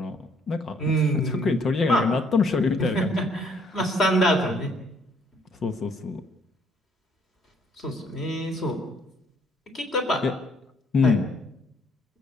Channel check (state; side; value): normal; both; correlation 0.65